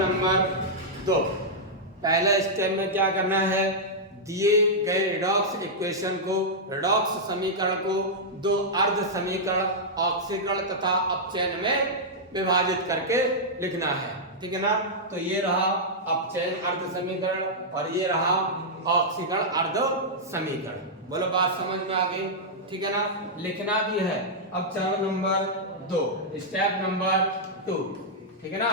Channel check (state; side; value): normal; both; correlation -0.08